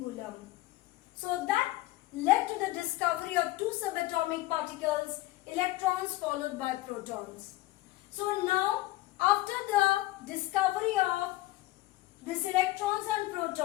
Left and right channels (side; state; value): right; quieter; 17.8 dB